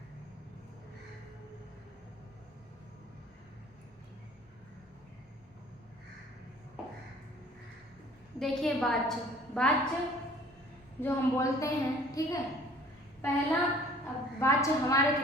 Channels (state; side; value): normal; both; correlation 0.52